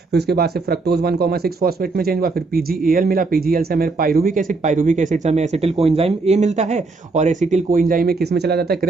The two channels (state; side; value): quieter; left; 3.8 dB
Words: उसके बाद से फ्रक्टोज 1,6 फॉस्फेट में चेंज हुआ, फिर PgAl मिला, PgAl से हमें पायरुविक एसिड से हमें एसिटिल कोएंजाइम A मिलता है, और एसिटिल कोएंजाइम किस में चला जाता है,